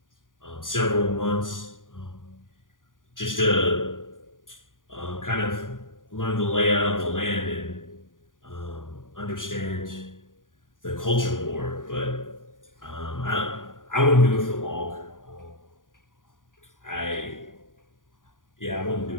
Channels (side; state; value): right; late; 0.89 ms